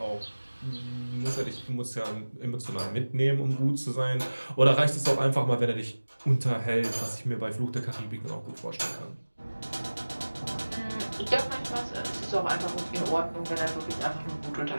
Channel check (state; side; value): inverted; both; correlation -1.00